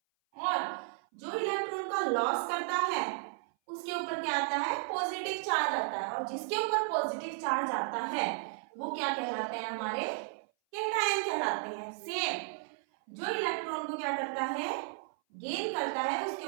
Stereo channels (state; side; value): silent; left; 55 dB below the other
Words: और जो इलेक्ट्रॉन का लॉस करता है उसके ऊपर क्या आता है, पॉजिटिव चार्ज आता है, और जिसके ऊपर पॉजिटिव चार्ज आता है वो क्या कहलाते हैं, हमारे कैटायन कहलाते हैं। सेम जो इलेक्ट्रॉन को क्या करता है, गेन करता है, उसके